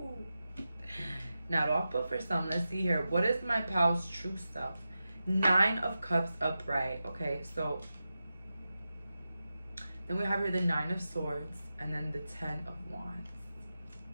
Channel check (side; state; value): both; inverted; correlation -0.92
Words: Now off, but for some, let's see here. What is my pal's true self? Nine of Cups upright. Okay, so then we have here the Nine of Swords and then the Ten of Wands.